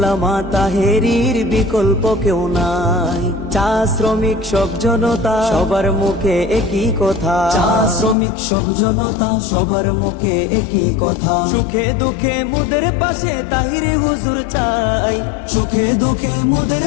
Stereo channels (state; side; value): drops out; right; at 8.2 s